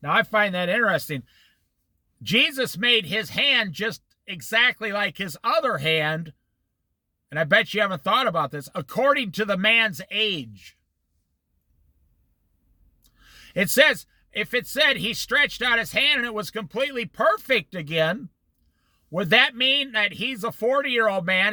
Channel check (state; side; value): identical; both; correlation 1.00